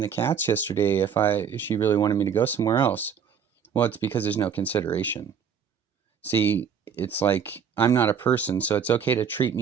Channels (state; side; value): quieter; left; 7.3 dB